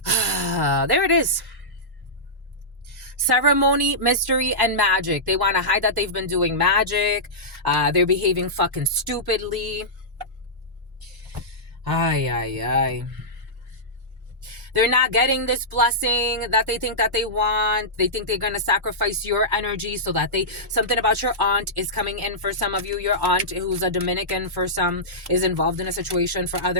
There it is. Ceremony, mystery, and magic. They want to hide that they've been doing magic. They're behaving fucking stupidly. Ay, ay, ay. They're not getting this blessing that they think that they want. They think they're going to sacrifice your energy so that something about your aunt is coming in for some of you. Your aunt, who's a Dominican for some, is involved in a situation for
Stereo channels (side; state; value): both; normal; correlation -0.14